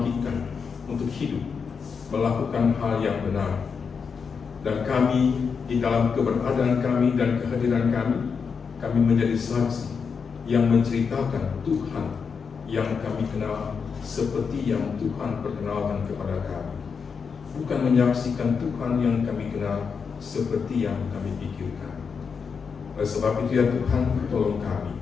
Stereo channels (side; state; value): right; quieter; 5.8 dB